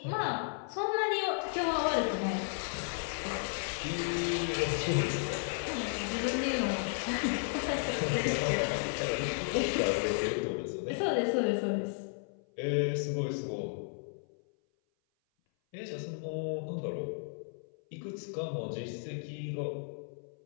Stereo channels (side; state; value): right; silent; 55 dB below the other